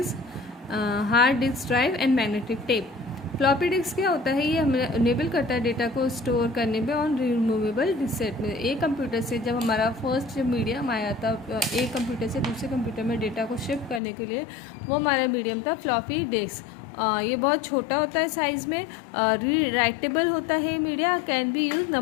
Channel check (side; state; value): right; drops out; at 14.0 s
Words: hard disk drive and magnetic tape. Floppy disk क्या होता है, ये हमें इनेबल करता है डेटा को स्टोर करने में ऑन रिमूवेबल डिस्क में. एक कंप्यूटर से जब हमारा फर्स्ट जब मीडियम आया था एक कंप्यूटर से दूसरे कंप्यूटर में डेटा को शिफ्ट करने के लिए, वो हमारा मीडियम था फ्लॉपी डिस्क. ये बहुत छोटा होता है साइज़ में, री राइटेबल होता है media, can be use